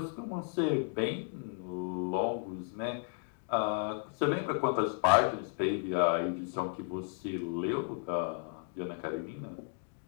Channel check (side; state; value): right; silent; 55 dB below the other